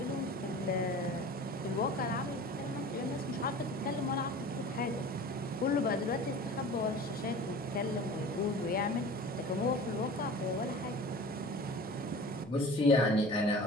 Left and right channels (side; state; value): both; normal; correlation 0.39